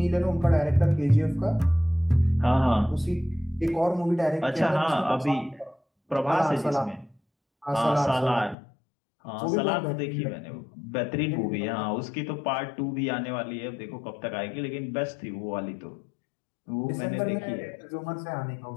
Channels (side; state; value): right; drops out; at 8.6 s